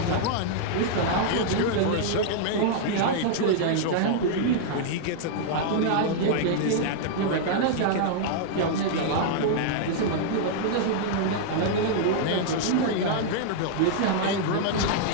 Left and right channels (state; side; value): different; both; correlation -0.01